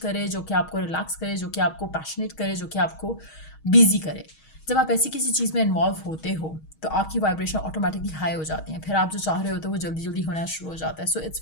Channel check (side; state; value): right; late; 6.3 ms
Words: जो कि आपको रिलैक्स करे, जो कि आपको पैशनेट करे, जो कि आपको बिजी करे। जब आप ऐसी किसी चीज़ में इन्वॉल्व होते हो तो आपकी वाइब्रेशन ऑटोमेटिकली हाई हो जाती हैं, फिर आप जो चाह रहे हो तो वो जल्दी जल्दी होना शुरू हो जाता है। So it's